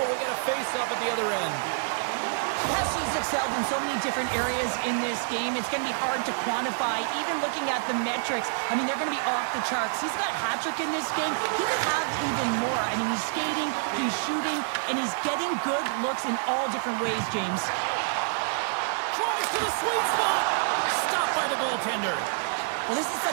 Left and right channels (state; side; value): silent; left; digital silence